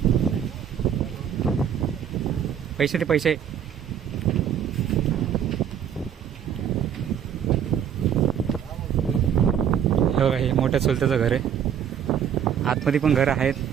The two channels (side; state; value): left; quieter; 8.9 dB